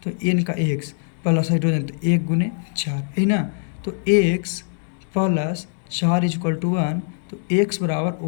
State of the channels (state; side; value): silent; right; digital silence